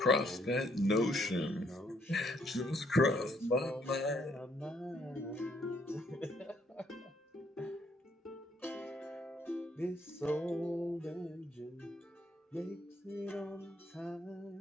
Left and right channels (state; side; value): normal; both; correlation 0.69